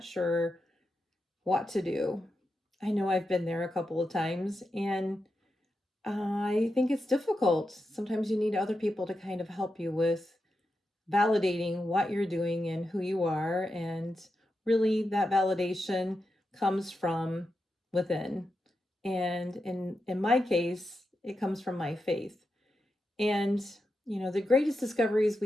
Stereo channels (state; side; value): normal; both; correlation 0.88